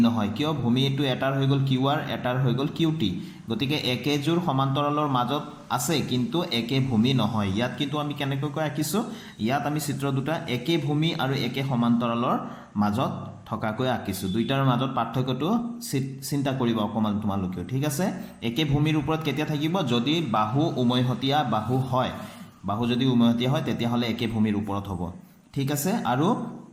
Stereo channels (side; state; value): both; identical; correlation 1.00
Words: নহয় কিয় ভূমিটো এটাৰ হৈ গ'ল QR এটাৰ হৈ গ'ল QT গতিকে একেজোৰ সমান্তৰালৰ মাজত আছে কিন্তু একে ভূমি নহয় ইয়াত কিন্তু আমি কেনেকৈ আঁকিছো ইয়াত আমি চিত্ৰ দুটা একে ভূমি আৰু একে সমান্তৰালৰ মাজত থকাকৈ আঁকিছো দুইটাৰ মাজত পাৰ্থক্যটো চিন্তা কৰিব অকমান তোমালোকে ঠিক আছে একে ভূমিৰ ওপৰত কেতিয়া থাকিব যদি বাহু উমৈহতীয়া বাহু হয় বাহু যদি উমৈহতীয়া হয় তেতিয়া হলে একে ভূমিৰ ওপৰত হ'ব ঠিক আছে আৰু